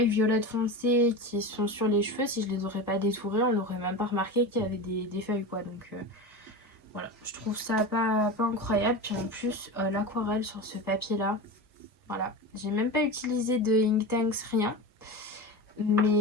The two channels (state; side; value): normal; both; correlation 0.26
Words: violettes foncées qui sont sur les cheveux, si je les aurais pas détourées, on n'aurait même pas remarqué qu'il y avait des feuilles quoi. Voilà, je trouve ça pas incroyable. Puis en plus, l'aquarelle sur ce papier-là, voilà. J'ai même pas utilisé de Inktanks, rien.